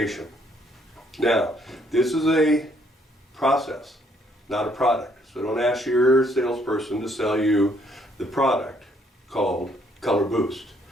Now, this is a process, not a product. So don't ask your salesperson to sell you the product called Color Boost.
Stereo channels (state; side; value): normal; both; correlation 0.68